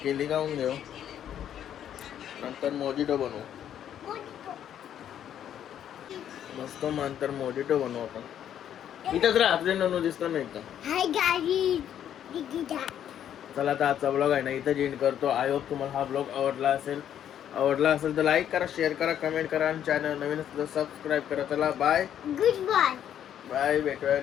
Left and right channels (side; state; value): right; quieter; 10.0 dB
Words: केली खाऊन घेऊ नंतर मोजिटो बनवू. मस्त नंतर मोजिटो बनवू आपण. इथंच राहा आपले ननू दिसतो नाही का. चला आता आजचा ब्लॉग आहे ना इथं एंड करतो. आय होप तुम्हाला हा ब्लॉग आवडला असेल तर लाईक करा शेअर करा कमेंट करा आणि चॅनल नवीन असेल तर सबस्क्राईब करा. चला बाय गुड बाय भेटूया